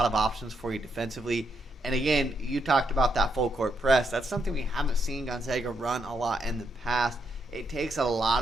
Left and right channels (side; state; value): both; normal; correlation 0.78